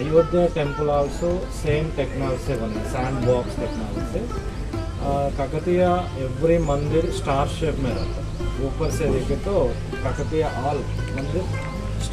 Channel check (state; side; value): identical; both; correlation 1.00